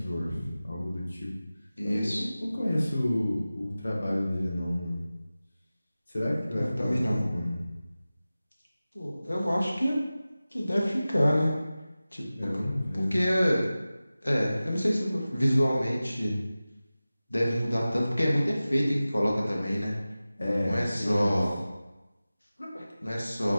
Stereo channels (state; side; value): inverted; both; correlation -0.96